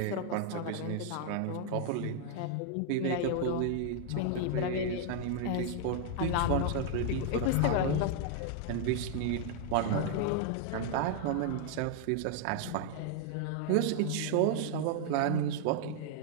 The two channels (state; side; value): different; both; correlation 0.00